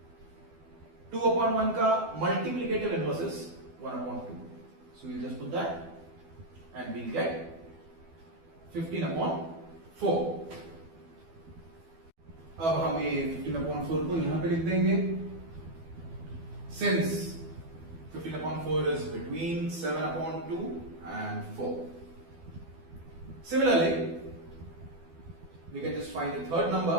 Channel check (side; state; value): left; late; 12 ms